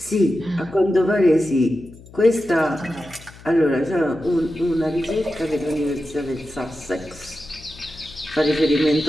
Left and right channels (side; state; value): left; noise; hum, 20 dB below the sound